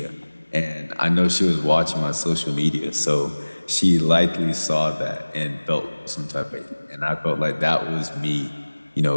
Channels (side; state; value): both; inverted; correlation -1.00